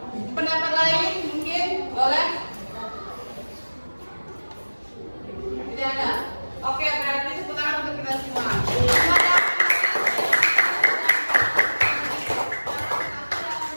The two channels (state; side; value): inverted; both; correlation -1.00